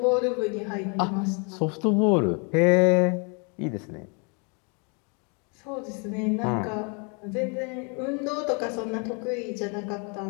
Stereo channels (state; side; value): quieter; right; 35.3 dB